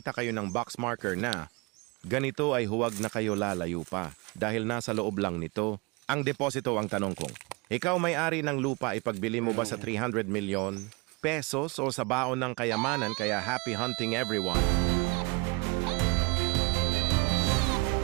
kayo ng box marker na ganito ay huwag na kayo lalayo pa dahil nasa loob lang nito. Ang deposito ang tanong kong, ikaw may-ari ng lupa ipagbili mo ba sa 300 million pesos o sa baon ng kayamanan kaya happy hunting everyone?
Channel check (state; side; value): quieter; left; 28.1 dB